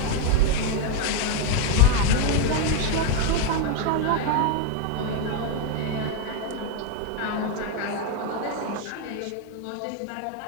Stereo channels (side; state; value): both; different; correlation 0.01